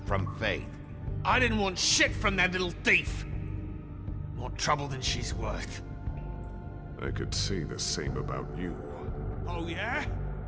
from Faith? I didn't want shit from that little thief. More trouble than she's worth. I could say the same about you. Oh yeah?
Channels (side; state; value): both; identical; correlation 1.00